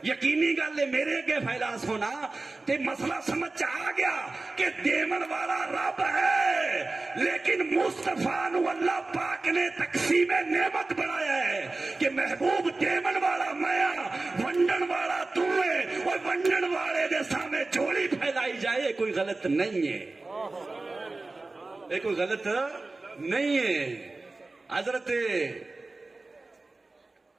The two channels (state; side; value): quieter; left; 3.3 dB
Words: یقینی گل ہے میرے اگے پھیلا سو نا, تے مسئلہ سمجھ آ گیا کہ دیون والا رب ہے, لیکن مصطفیٰ نو اللہ پاک نے تقسیم نعمت بنایا ہے کہ محبوب دیون والا میں, ونڈن والا تو ہے. اور ونڈن والے دے سامنے جوڑی پھیلائی جائے کوئی غلط نہیں ہے, یہ کوئی غلط نہیں ہے. حضرت